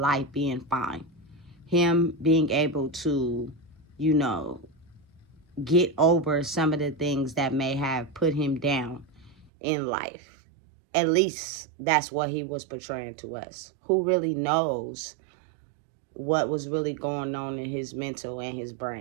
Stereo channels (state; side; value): drops out; left; at 9.5 s